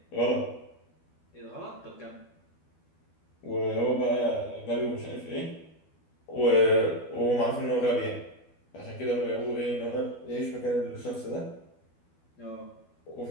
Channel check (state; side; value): late; right; 12 ms